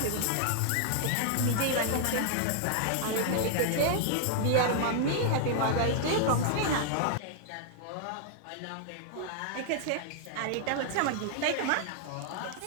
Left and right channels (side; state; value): both; different; correlation -0.01